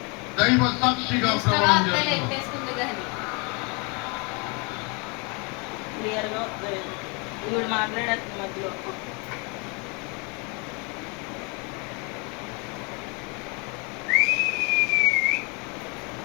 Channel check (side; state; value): right; quieter; 31.5 dB